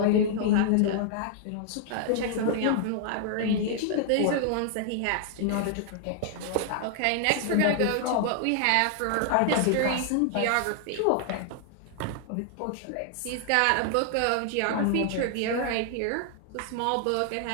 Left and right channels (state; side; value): different; both; correlation 0.00